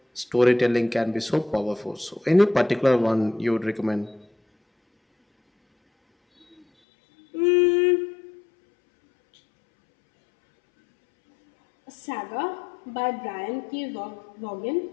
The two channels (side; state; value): right; drops out; at 6.7 s